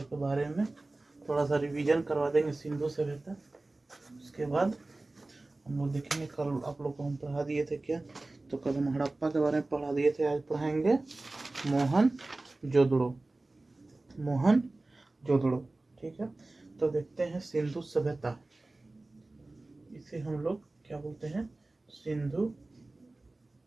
के बारे में। थोड़ा सा रिवीजन करवा देंगे सिंधु सभ्यता। उसके बाद हम लोग देखेंगे, कल आप लोग को हम पढ़ा दिए थे क्या, तो कल हम हड़प्पा के बारे में पढ़ा दिए थे, आज पढ़ाएंगे मोहनजोदड़ो। ठीक है, तो देखते हैं सिंधु सभ्यता। इसे हम लोग क्या बोलते हैं, सिंधु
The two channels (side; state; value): left; quieter; 3.0 dB